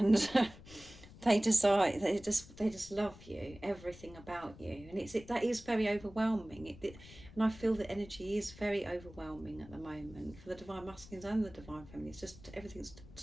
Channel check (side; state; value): left; noise; rumble, 19 dB below the sound